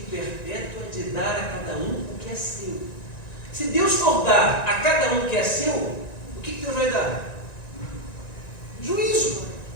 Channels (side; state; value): right; late; 1.9 ms